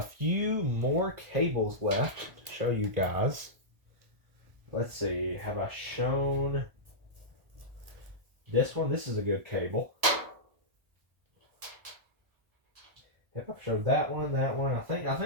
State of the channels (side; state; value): left; late; 1.4 ms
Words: few more cables left to show you guys. Let's see, have I shown this one? This is a good cable. Yep, I've showed that one. I